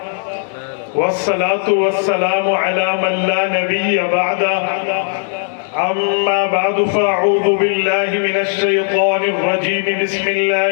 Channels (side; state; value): right; silent; 69 dB below the other